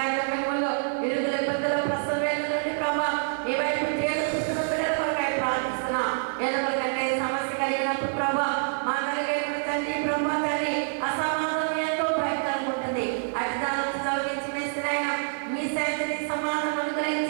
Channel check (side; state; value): left; silent; digital silence